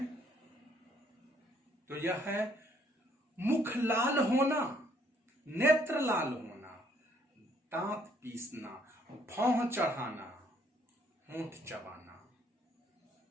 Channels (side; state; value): both; normal; correlation 0.66